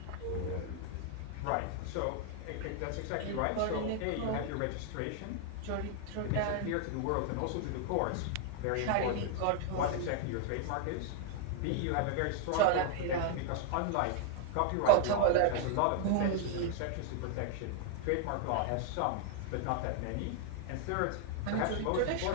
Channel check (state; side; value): different; both; correlation 0.00